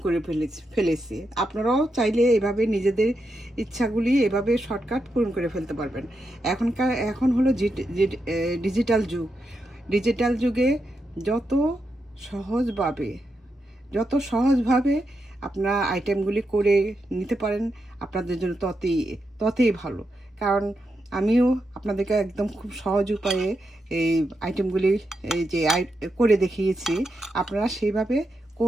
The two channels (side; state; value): both; normal; correlation 0.85